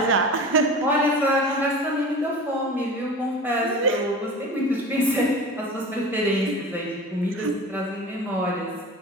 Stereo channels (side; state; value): both; normal; correlation 0.35